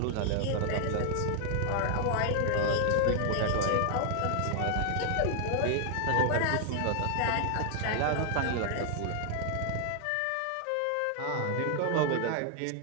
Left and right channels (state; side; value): different; both; correlation 0.00